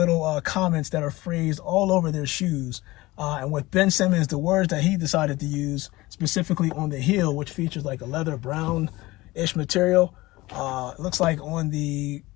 comments that are phrased all over their shoes. And with Ben Simmons, the words that he decided to use specifically on the heel, which features like a leather brown-ish material. It looks like on the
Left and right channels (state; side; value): quieter; right; 19.9 dB